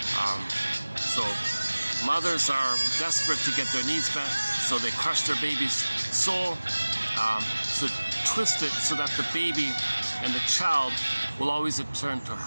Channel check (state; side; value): inverted; both; correlation -1.00